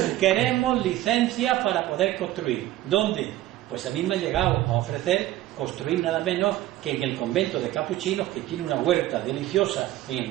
Queremos licencia para poder construir. ¿Dónde? Pues a mí me han llegado a ofrecer construir nada menos que en el convento de capuchinos, que tiene una huerta deliciosa en el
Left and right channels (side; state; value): left; quieter; 15.1 dB